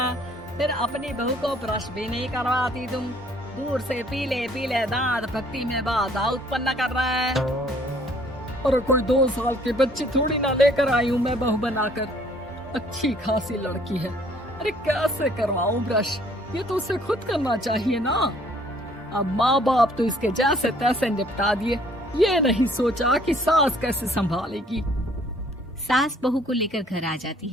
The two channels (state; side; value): normal; both; correlation 0.60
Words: फिर अपनी बहू को ब्रश भी नहीं करवाती तुम। दूर से पीले पीले दांत भक्ति में बाधा उत्पन्न कर रहा है। अरे कोई 2 साल के बच्चे थोड़ी ना लेकर आई हूँ मैं बहू बनाकर, अच्छी खासी लड़की है। अरे कैसे करवाऊं ब्रश, ये तो उसे खुद करना चाहिए ना। अब माँ बाप तो इसके जैसे तैसे निपटा दिए, ये नहीं सोचा कि सास कैसे संभालेगी। सास बहू को लेकर घर आ जाती